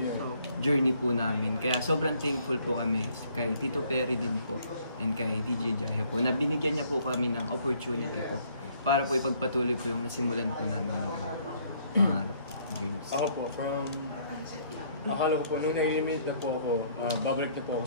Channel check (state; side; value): inverted; both; correlation -0.63